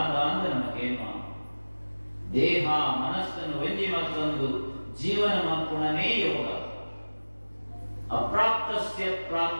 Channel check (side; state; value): both; inverted; correlation -1.00